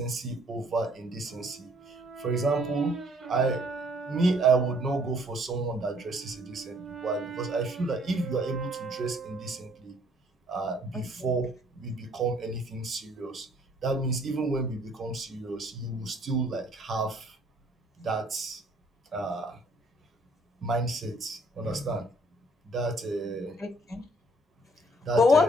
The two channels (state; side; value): normal; both; correlation 0.62